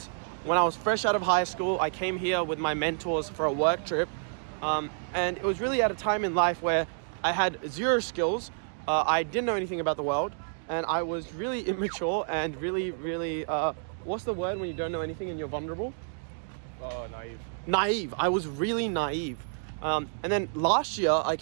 when I was fresh out of high school. I came here with my mentors for a work trip, and it was really at a time in life where I had zero skills. I didn't know anything about the world, and I was really immature and really, what's the word when you don't know anything and you're vulnerable? Oh, naive. Naive. I was really naive. And then last year I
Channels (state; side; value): silent; left; digital silence